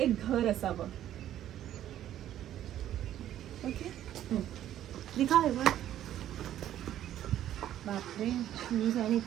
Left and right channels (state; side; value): quieter; left; 11.8 dB